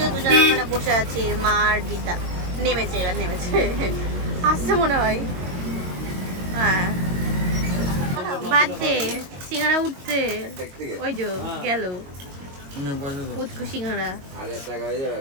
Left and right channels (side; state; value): left; late; 22 ms